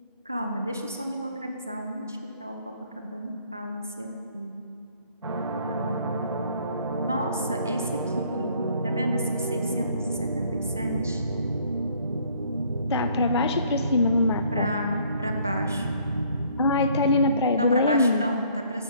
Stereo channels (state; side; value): inverted; both; correlation -0.61